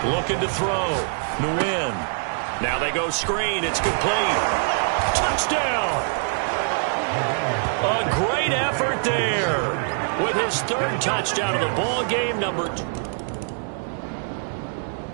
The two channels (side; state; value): left; silent; digital silence